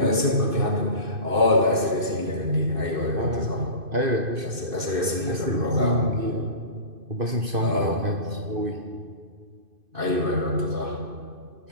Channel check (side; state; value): left; late; 2.5 ms